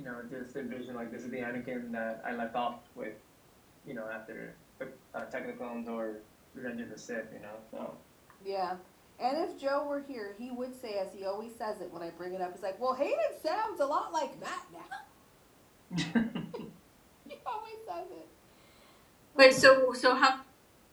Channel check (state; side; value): identical; both; correlation 1.00